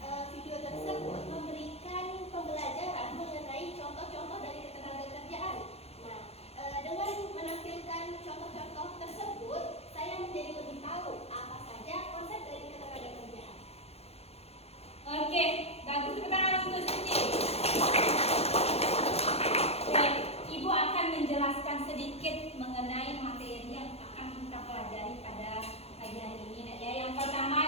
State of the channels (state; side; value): late; right; 0.30 ms